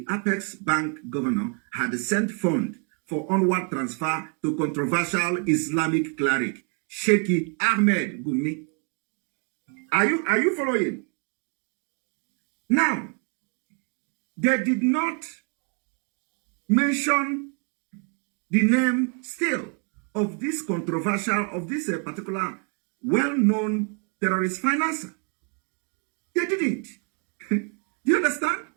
Apex Bank governor had sent funds for onward transfer to controversial Islamic cleric Sheikh Ahmed Gumi. Are you following? Now, they did not mention the name still of this controversial, of this particular well-known terrorist financer. They didn't. Do you understand?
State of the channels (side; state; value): left; quieter; 38.5 dB